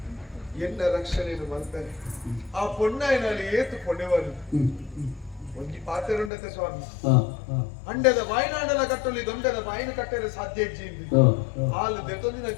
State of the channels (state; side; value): drops out; right; at 6.3 s